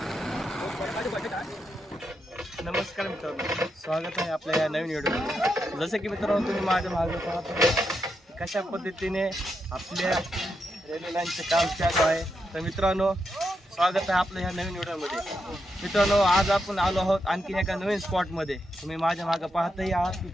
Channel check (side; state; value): both; normal; correlation 0.84